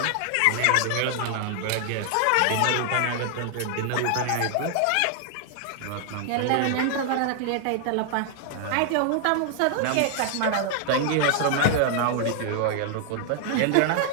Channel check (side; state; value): both; different; correlation 0.00